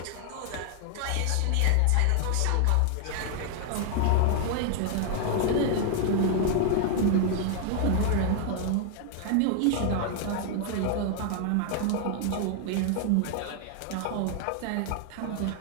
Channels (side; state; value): both; different; correlation 0.00